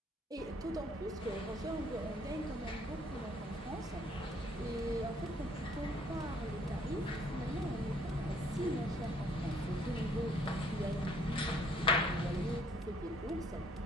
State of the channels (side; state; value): both; normal; correlation 0.63